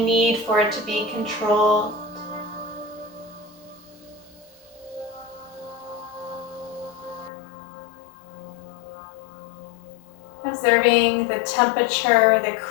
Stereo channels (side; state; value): right; drops out; at 7.3 s